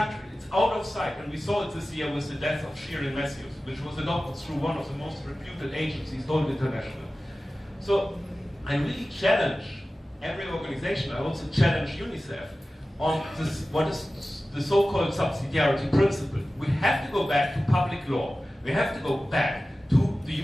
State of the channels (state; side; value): normal; both; correlation 0.96